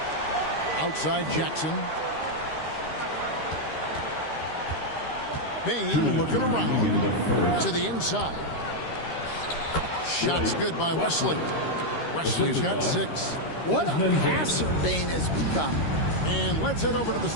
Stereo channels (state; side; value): late; right; 13 ms